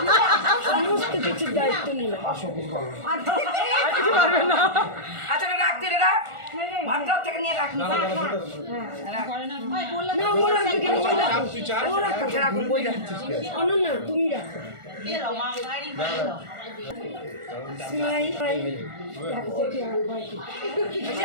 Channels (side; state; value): left; late; 1.4 ms